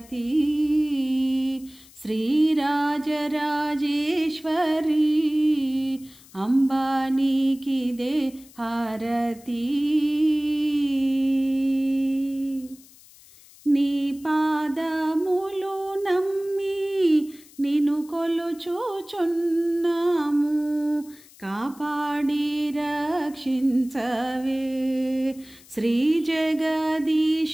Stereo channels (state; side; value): noise; left; hiss, 24 dB below the sound